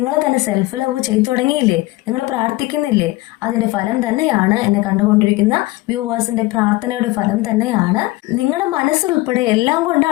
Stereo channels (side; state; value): right; quieter; 19.9 dB